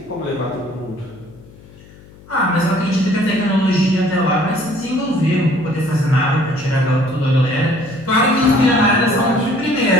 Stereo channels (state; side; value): noise; left; hum, 23 dB below the sound